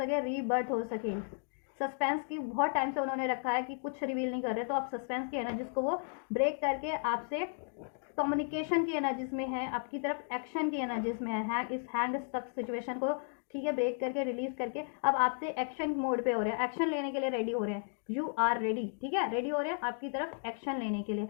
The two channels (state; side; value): silent; right; 55 dB below the other